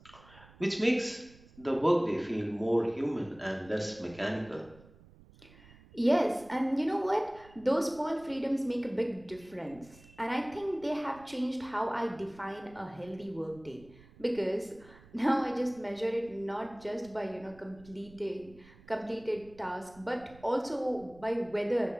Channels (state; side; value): noise; right; rumble, 23 dB below the sound